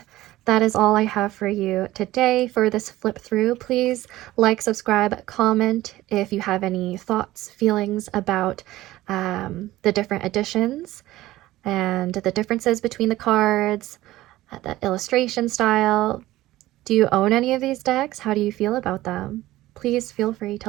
that is all I have for you today for this flip through. Please like, subscribe, comment if you have any thoughts, feelings about the different editions and the differences between the cards, the illustration style. Do you own any of these decks? How do you feel about them? please feel free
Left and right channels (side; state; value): left; quieter; 16.3 dB